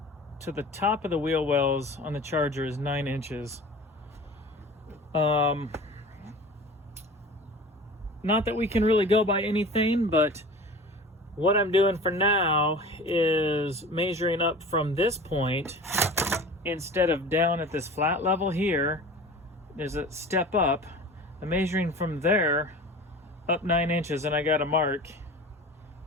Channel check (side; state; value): both; normal; correlation 0.38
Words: to the top of the wheel wells on the Charger is 9 inches. Not that we can really go by anything, but what I'm doing for now is measuring up from this point. Instead of down at this flat level here, there's a step up. I'm measuring from there up 9 inches, and I got a mark